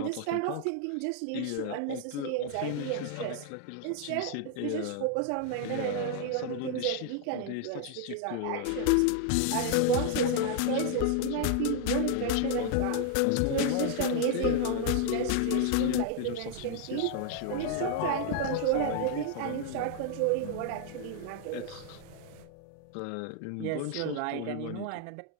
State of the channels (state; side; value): different; both; correlation 0.00